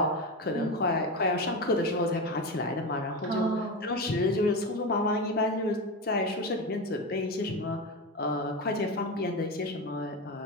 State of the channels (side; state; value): both; normal; correlation 0.19